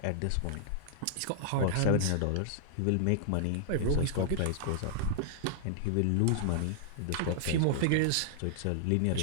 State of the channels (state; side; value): different; both; correlation -0.01